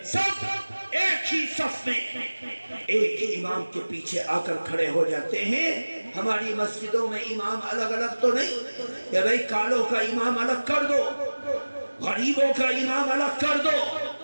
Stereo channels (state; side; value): inverted; both; correlation -1.00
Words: سب ایک ہی صف میں ایک ہی امام کے پیچھے آ کر کھڑے ہو جاتے ہیں۔ ہماری مسجدوں میں امام الگ الگ تو نہیں کہ بھئی کالوں کا امام الگ کر دو، غریبوں کا امام الگ کر دو،